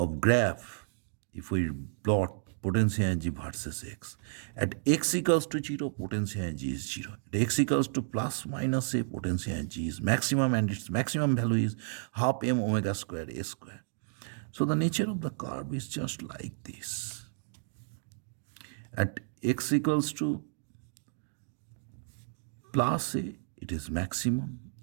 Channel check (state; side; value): silent; left; digital silence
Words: graph if we plot potential energy versus x. At x equals to 0, potential energy is 0. At x equals to plus minus a, potential energy is maximum, and its maximum value is half m omega squared a square. So the nature of the curve is just like this. At x equals to plus a, it is maximum.